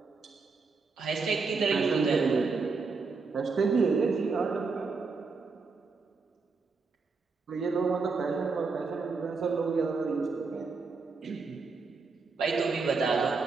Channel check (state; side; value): quieter; left; 4.5 dB